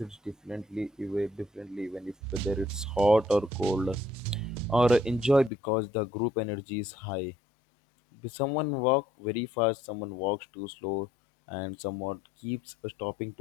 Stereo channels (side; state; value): right; drops out; at 5.5 s